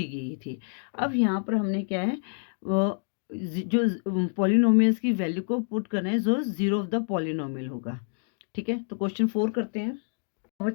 गई थी। अब यहाँ पर हमने क्या है, जो पॉलिनोमियल्स की वैल्यू को पुट करना है जो जीरो ऑफ द पॉलिनोमियल होगा। ठीक है, तो क्वेश्चन 4 करते हैं।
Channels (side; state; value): right; silent; digital silence